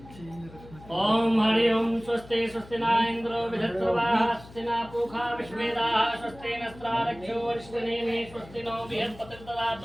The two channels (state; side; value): noise; left; hum, 19 dB below the sound